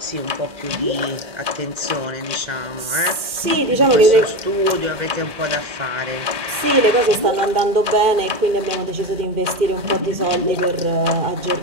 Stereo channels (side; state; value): left; late; 2.4 ms